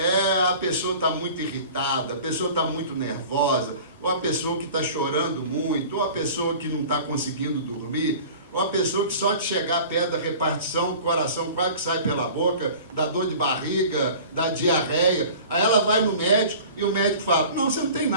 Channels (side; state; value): both; inverted; correlation -0.42